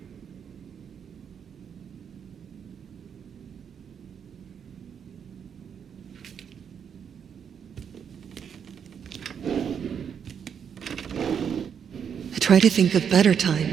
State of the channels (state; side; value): quieter; left; 7.6 dB